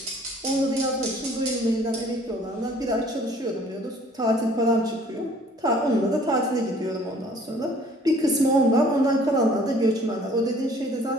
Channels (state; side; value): normal; both; correlation 0.55